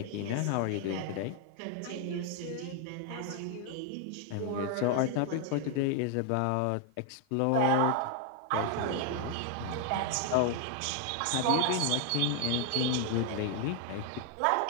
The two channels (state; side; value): different; both; correlation 0.00